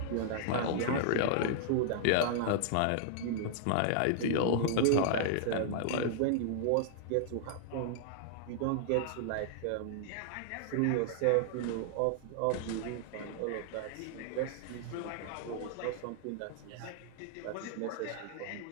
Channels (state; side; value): different; both; correlation -0.01